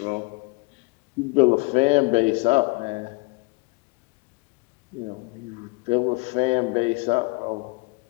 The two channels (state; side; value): quieter; right; 28.2 dB